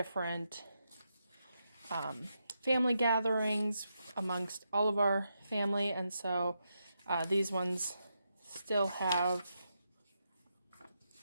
family gatherings amongst all of our family, and so these ones still have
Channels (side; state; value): both; inverted; correlation -0.84